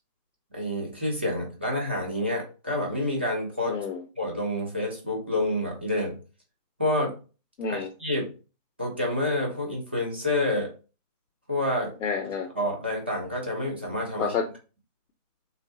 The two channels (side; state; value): both; inverted; correlation -0.37